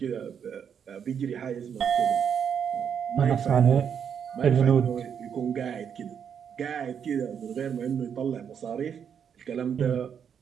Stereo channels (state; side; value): quieter; left; 7.7 dB